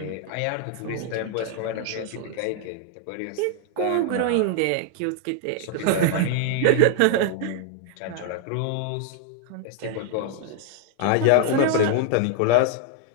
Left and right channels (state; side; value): different; both; correlation 0.00